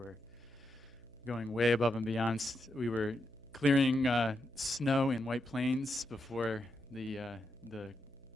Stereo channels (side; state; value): right; noise; hum, 25 dB below the sound